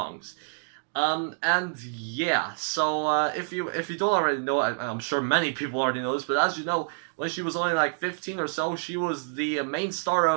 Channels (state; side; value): silent; left; digital silence